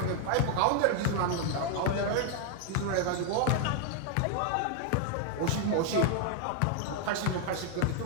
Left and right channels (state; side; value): different; both; correlation 0.00